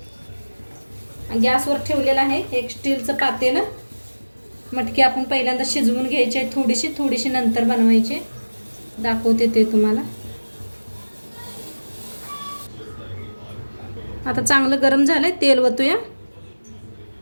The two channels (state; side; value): inverted; both; correlation -1.00